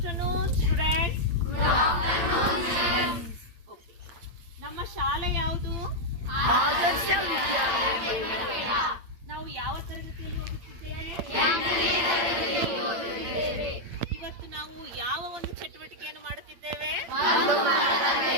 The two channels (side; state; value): left; late; 8.7 ms